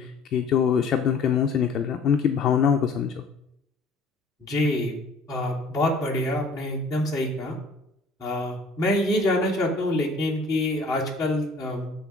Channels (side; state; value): right; quieter; 3.5 dB